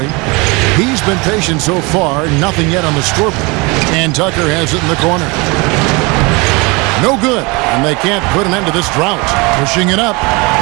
He's been patient so far, nothing yet on the scoreboard. And Tucker has it in the corner. No good, and they can't put an end to this drought. Pushing it up.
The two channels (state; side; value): quieter; left; 27.0 dB